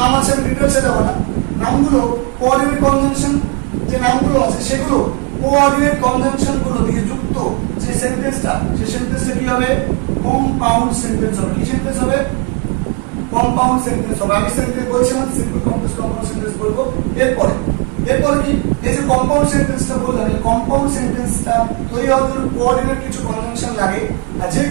আছে, আমি ডিটেইলসে যাব না, নামগুলো কোঅর্ডিনেট কনজাংশন যে নামগুলো আছে সেগুলো কোঅর্ডিনেট কনজাংশন গুলো দিয়ে যুক্ত যে সেন্টেন্সটা, সেই সেন্টেন্সটা কি হবে, কম্পাউন্ড সেন্টেন্স হবে। কি সেন্টেন্স হবে, কম্পাউন্ড সেন্টেন্স হবে। আমি সেন্টেন্স বলছিলাম সিম্পল কমপ্লেক্স কম্পাউন্ড সেন্টেন্স বলবো। এরপরে কি, এই যে কম্পাউন্ড সেন্টেন্সটা বললাম, এই কম্পাউন্ড সেন্টেন্সটা তৈরি হওয়ার জন্য কোঅর্ডিনেট কিছু কনজাংশন লাগে। আর যে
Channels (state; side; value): quieter; left; 32.2 dB